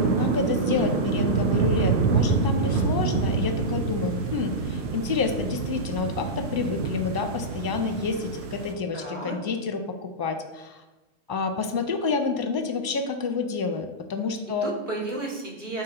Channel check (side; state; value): left; late; 1.0 ms